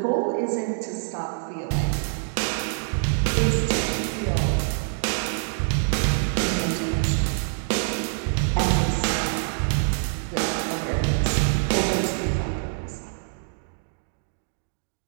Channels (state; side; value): silent; left; 61 dB below the other